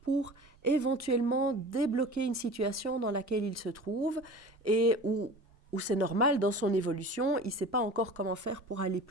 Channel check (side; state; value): both; normal; correlation 0.38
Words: pour éventuellement débloquer une situation dans laquelle il se trouve et où c'est normal dans son évolution, il ne sait pas encore comment faire pour aller